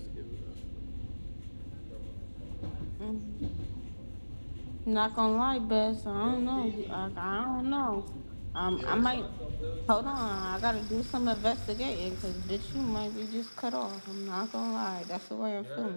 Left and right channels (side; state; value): both; inverted; correlation -1.00